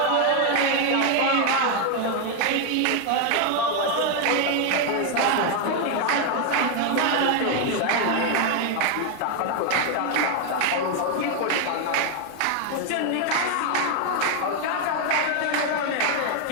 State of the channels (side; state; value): both; different; correlation 0.01